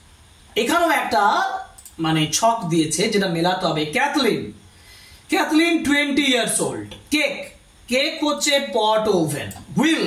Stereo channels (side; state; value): both; identical; correlation 1.00